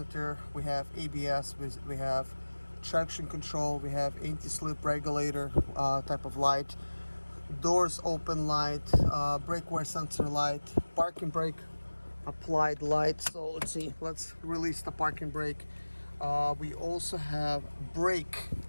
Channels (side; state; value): both; inverted; correlation -1.00